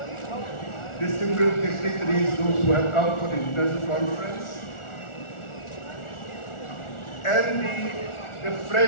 distinguished dignitaries, those who have come for the international conference, and the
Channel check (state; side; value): late; right; 1.4 ms